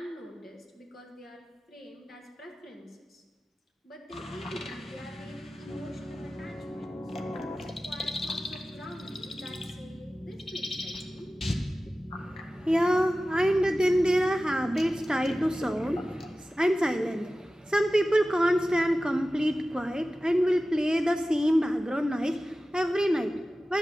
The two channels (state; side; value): normal; both; correlation 0.95